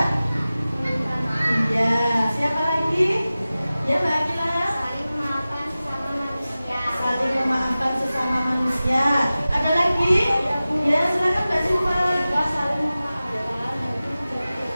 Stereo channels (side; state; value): both; inverted; correlation -0.96